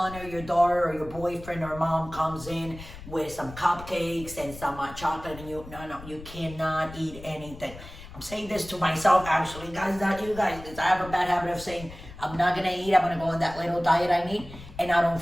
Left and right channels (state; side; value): noise; left; rumble, 15 dB below the sound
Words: or your daughter or your boyfriend or mom comes in with some cupcakes and some chocolate. And no, you cannot eat anything. I'm saying this to myself, actually. Guys, not you guys. Because I have a bad habit of saying, I'm not going to eat. I'm going to go on that little diet I need. And I don't